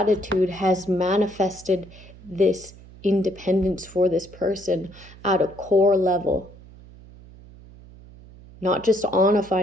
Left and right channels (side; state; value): right; noise; hum, 21 dB below the sound